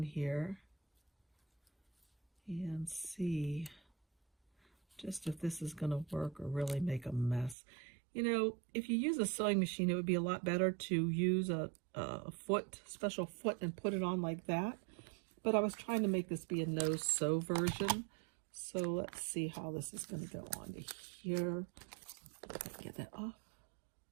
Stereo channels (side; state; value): left; drops out; at 7.6 s